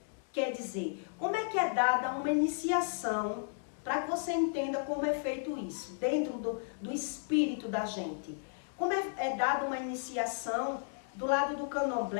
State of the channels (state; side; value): silent; right; digital silence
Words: Quer dizer, como é que é dada uma iniciação para que você entenda como é feito isso, dentro do espírito da gente? Como é dada uma iniciação do lado do